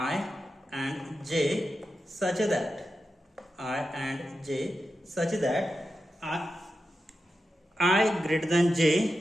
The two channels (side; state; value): both; normal; correlation 0.90